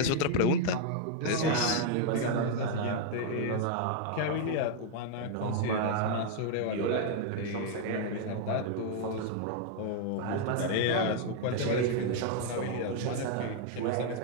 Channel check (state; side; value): different; both; correlation 0.00